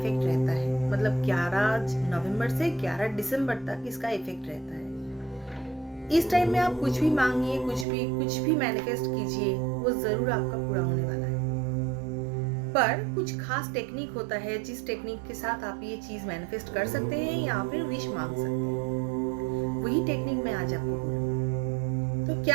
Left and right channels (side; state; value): left; drops out; at 7.9 s